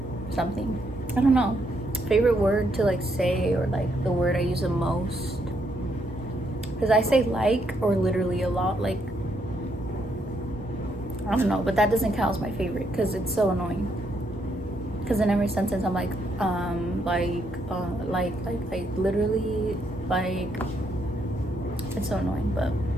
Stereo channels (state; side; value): normal; both; correlation 0.75